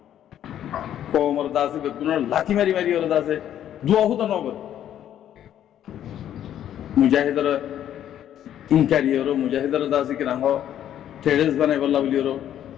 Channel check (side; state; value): right; quieter; 10.8 dB